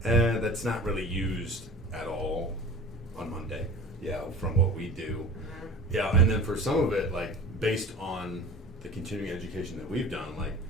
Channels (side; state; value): both; normal; correlation 0.40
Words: that's not really used at all on Monday. Yeah, from what we do. Mhm. Yeah, and then for some of it, like based on the continuing education that we've done, like